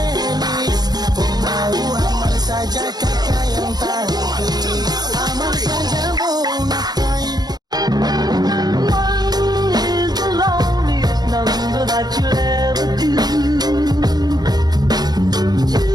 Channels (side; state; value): left; late; 0.19 ms